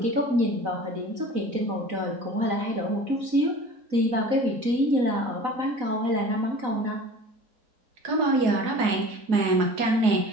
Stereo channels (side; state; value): left; late; 4.0 ms